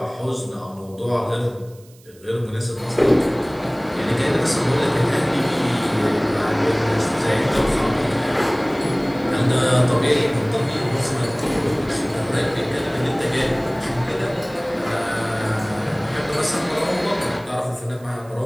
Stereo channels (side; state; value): right; noise; hiss, 27 dB below the sound